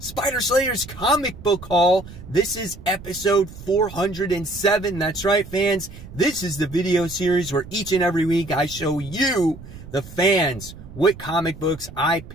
Slayer's comic book haul. This is episode 407. That's right, fans. This is the video series where each and every week I show you, the fans, what comic books I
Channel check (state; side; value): noise; right; rumble, 15 dB below the sound